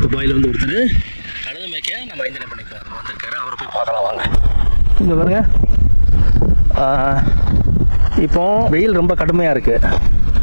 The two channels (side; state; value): both; inverted; correlation -1.00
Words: துபாயில் வந்து ஒருத்தர் கழுது மேய்க்க நம்ம அஞ்சனை பண்ணிக்க வந்திருக்காரு. அவரை போய் பார்க்கலாம் வாங்க. இங்கே பாருங்க, இப்போ வெயில் ரொம்ப கடுமையாக இருக்குது.